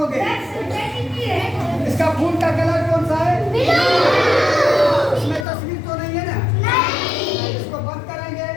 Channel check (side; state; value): right; drops out; at 5.5 s